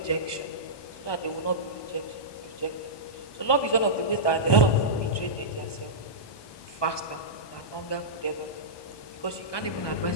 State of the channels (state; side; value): late; right; 1.2 ms